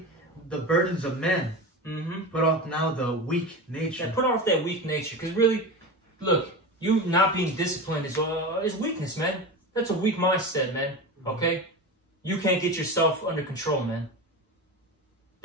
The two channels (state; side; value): normal; both; correlation 0.26